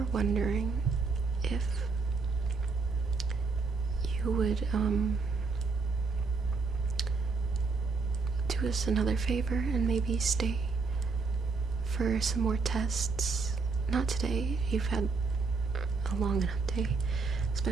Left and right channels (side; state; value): left; quieter; 4.4 dB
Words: wondering if you would, do us another favor and maybe stay for some more tests. Not today. You've had a long enough day.